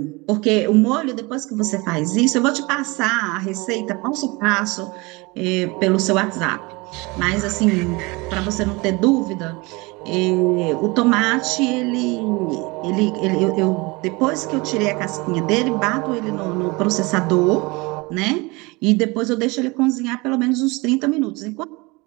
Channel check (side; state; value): left; quieter; 25.1 dB